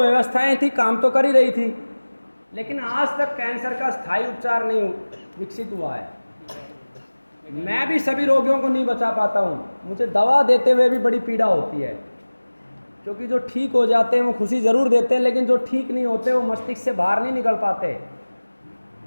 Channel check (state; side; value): inverted; both; correlation -1.00